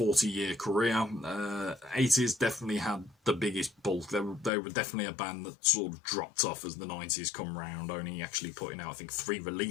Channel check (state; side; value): drops out; right; at 4.5 s